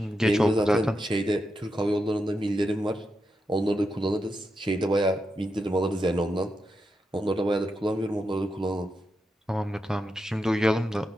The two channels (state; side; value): normal; both; correlation 0.86